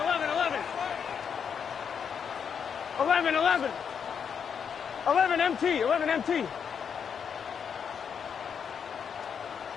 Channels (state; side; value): quieter; right; 7.1 dB